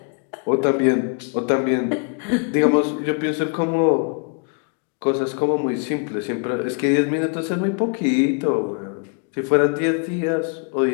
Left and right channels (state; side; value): quieter; right; 39.3 dB